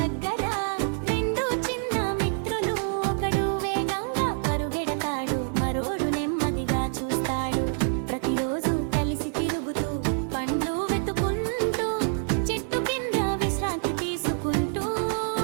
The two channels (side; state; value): left; silent; 55 dB below the other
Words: దగ్గర రెండు చిన్న మిత్రులు, ఒకడు వేగంగా పరుగెడతాడు, మరోడు నెమ్మదిగా చూస్తాడు. ప్రతిరోజు కలిసి తిరుగుతూ పండ్లు వెతుకుంటూ చెట్టు కింద విశ్రాంతి తీసుకుంటూ